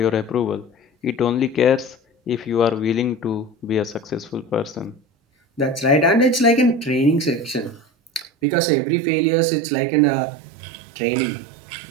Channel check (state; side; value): drops out; left; at 8.2 s